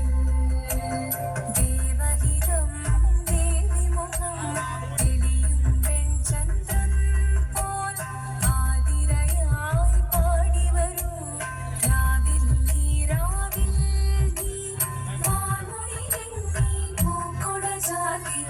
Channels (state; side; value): identical; both; correlation 1.00